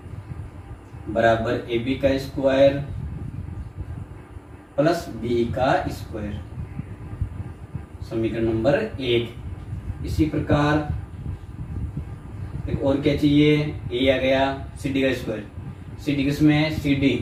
बराबर ए बी का स्क्वायर प्लस बी का स्क्वायर, समीकरण नंबर 1। इसी प्रकार एक और क्या चाहिए, ए आ गया, सी डी का स्क्वायर, सी डी किसमें, सी डी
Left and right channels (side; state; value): both; identical; correlation 1.00